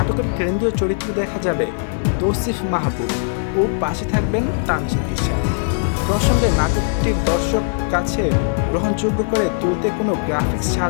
কেন্দ্রীয় চরিত্র দেখা যাবে তৌসিফ মাহবুব ও পাশে থাকবেন তানজিন তিশা। প্রসঙ্গে নাটকটির দর্শক কাছে গ্রহণযোগ্য করে তুলতে কোনো গ্রাফিক্স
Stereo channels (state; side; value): silent; right; 63 dB below the other